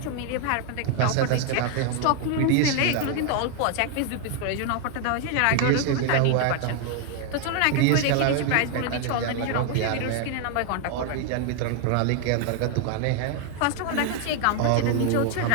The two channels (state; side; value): different; both; correlation 0.00